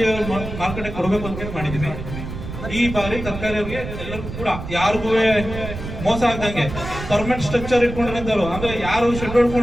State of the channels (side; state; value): right; noise; rumble, 8 dB below the sound